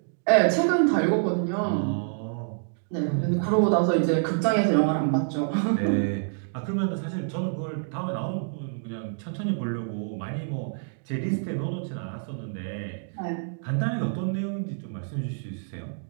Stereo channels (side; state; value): left; silent; digital silence